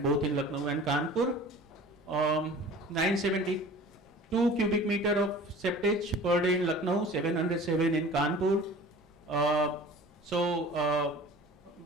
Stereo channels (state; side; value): normal; both; correlation 0.43